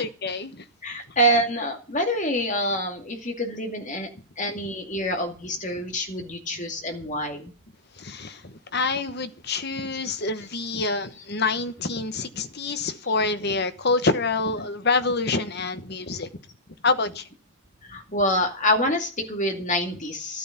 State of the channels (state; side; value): normal; both; correlation -0.15